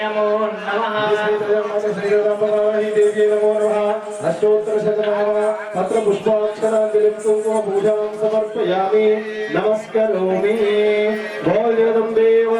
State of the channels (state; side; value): identical; both; correlation 1.00